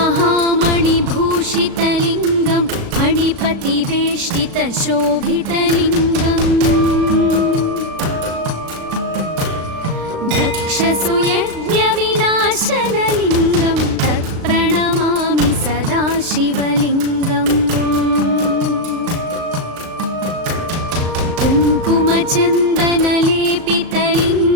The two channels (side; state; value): left; late; 36 ms